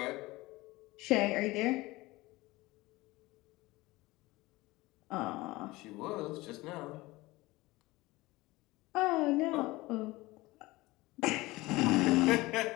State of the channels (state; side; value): quieter; right; 20.5 dB